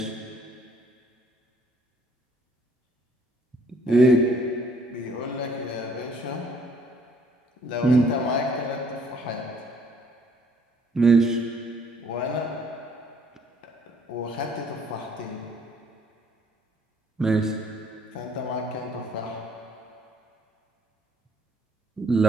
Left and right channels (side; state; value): both; normal; correlation 0.61